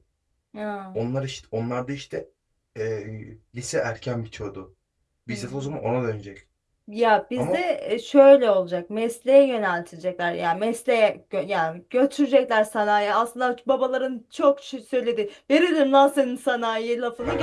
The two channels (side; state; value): both; identical; correlation 1.00